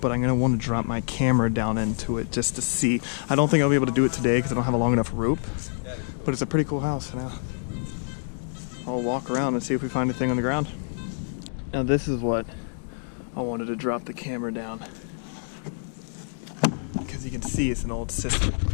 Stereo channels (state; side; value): silent; right; digital silence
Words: I'm going to want to drop my camera down into it just to see. I don't think I'll be able to do it today because I don't have a long enough rope, but it's a pretty cool house. Now I'll walk around and see if we find anything on the ground. Now this is what I wanted to drop the camera down, because you can see it's an old cistern.